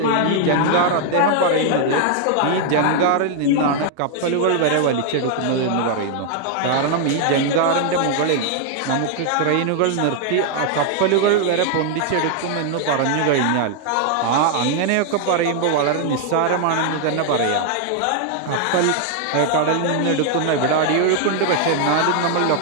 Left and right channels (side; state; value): both; different; correlation 0.00